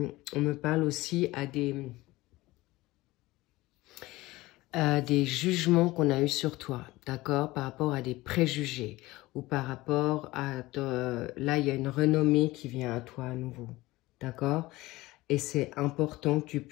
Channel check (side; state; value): right; quieter; 19.4 dB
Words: on me parle aussi à des jugements qu'on a eus sur toi, d'accord, par rapport à des préjugés, ou par rapport à, là il y a une renommée qui vient à toi à nouveau, d'accord, et c'est important que tu